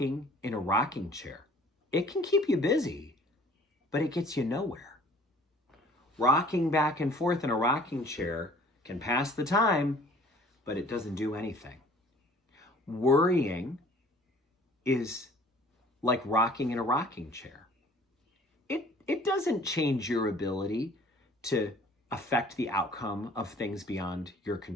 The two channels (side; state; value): both; normal; correlation 0.51